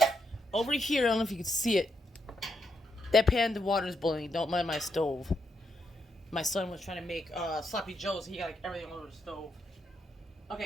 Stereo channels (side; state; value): both; normal; correlation 0.80